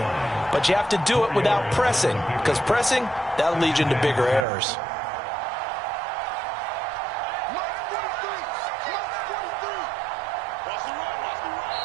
but you have to do it without pressing, because pressing, that'll lead you into bigger errors.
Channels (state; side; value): drops out; left; at 4.5 s